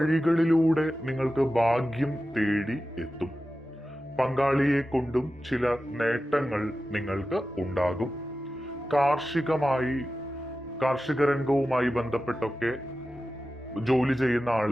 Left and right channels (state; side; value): normal; both; correlation 0.93